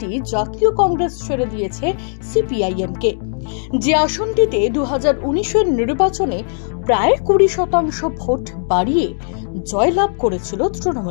জাতীয় কংগ্রেস ছেড়ে দিয়েছে সিপিআইএমকে, যে আসনটিতে 2019-এর নির্বাচনে প্রায় 20% ভোট বাড়িয়ে জয়লাভ করেছিল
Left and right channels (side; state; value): right; silent; digital silence